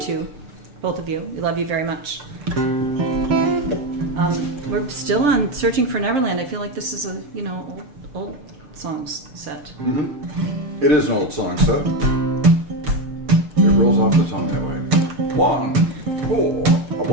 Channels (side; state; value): left; late; 6.7 ms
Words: two, both of you. We love you very much. We're still on Searching for Neverland. I feel like this is a, you know, old songs set. Mm-hmm. It is an old song set. It rolls off the tongue that way. 1, 4,